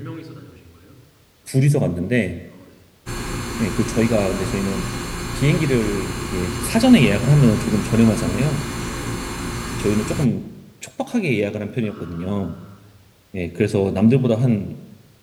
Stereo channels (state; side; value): identical; both; correlation 1.00